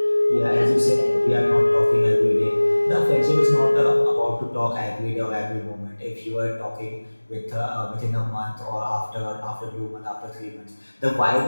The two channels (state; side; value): inverted; both; correlation -1.00